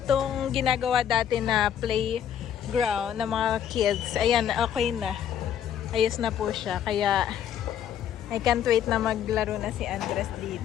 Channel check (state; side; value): quieter; right; 9.5 dB